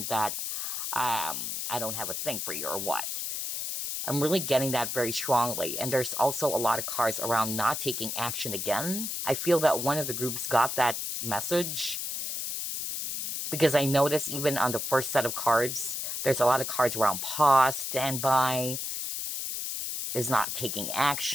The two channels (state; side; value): noise; left; hiss, 3 dB below the sound